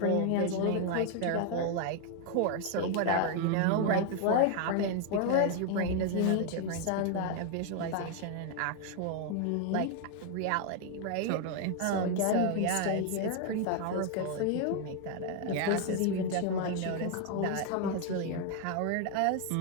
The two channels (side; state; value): both; different; correlation 0.00